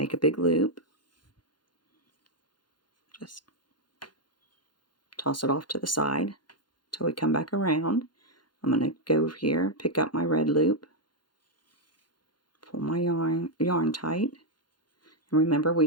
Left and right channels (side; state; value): right; late; 0.71 ms